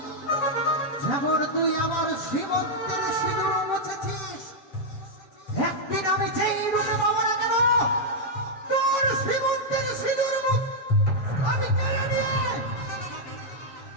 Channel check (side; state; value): right; late; 7.8 ms